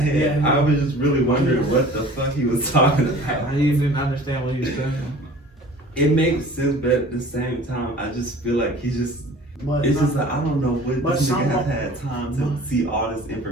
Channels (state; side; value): normal; both; correlation 0.45